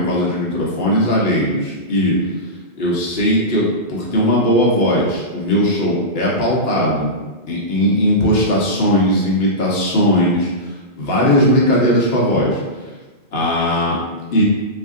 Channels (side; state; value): right; late; 2.9 ms